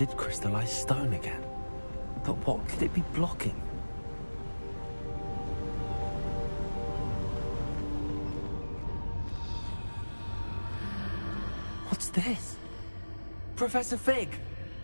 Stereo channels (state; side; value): inverted; both; correlation -1.00